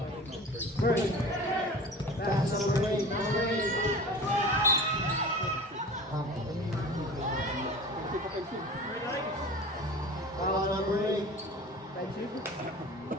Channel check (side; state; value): both; normal; correlation 0.37